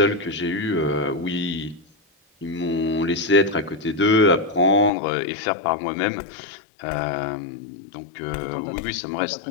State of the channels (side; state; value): right; drops out; at 4.9 s